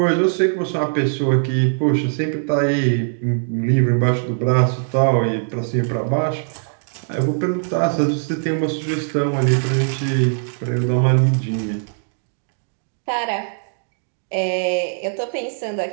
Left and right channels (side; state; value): left; silent; digital silence